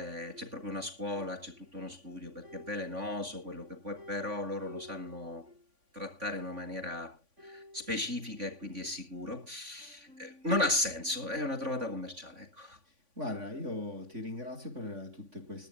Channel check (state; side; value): late; left; 3.5 ms